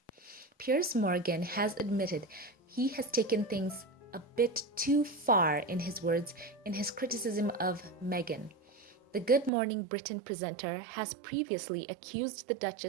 Piers Morgan has admitted he has taken things a bit too far, in his words, in his criticism of Meghan. The Good Morning Britain presenter has previously accused the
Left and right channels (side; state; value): left; drops out; at 9.5 s